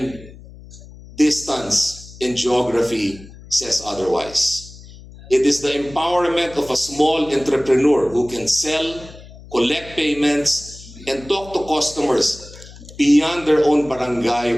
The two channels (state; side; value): noise; left; hum, 19 dB below the sound